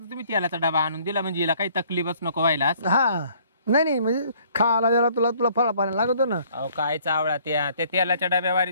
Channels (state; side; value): inverted; both; correlation -0.60